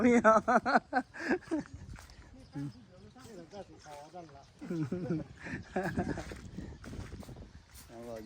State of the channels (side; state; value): both; identical; correlation 1.00